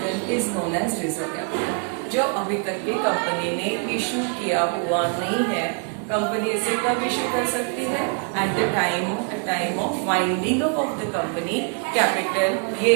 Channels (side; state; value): left; quieter; 39.3 dB